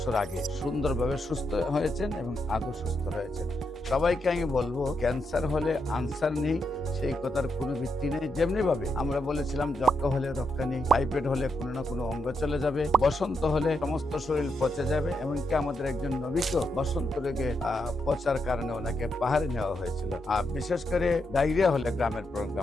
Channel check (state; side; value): normal; both; correlation 0.82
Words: আগে। সুন্দরভাবে সুস্থ হয়েছেন এবং আদৌ সুস্থ রয়েছেন। সবাইকে আমি বলবো ক্যান্সার হলে আনসার নেই, সেই কথার কোনো ভিত্তি নেই। যেমনি ভাবে আমরা বলেছিলাম যক্ষা হলে রক্ষা নেই, টাইফয়েড হলে কোনো না কোনো অঙ্গ চলে যাবে, বসন্ত হলে সমস্ত শরীর পচে যাবে। এমনকি আমাদের একজন নবীকে বসন্ত রোগে পচার কারণে ওনাকে পাহাড়ে নেওয়া হয়েছিল। আর বিশেষ করে ডায়রিয়া হলে গ্রামের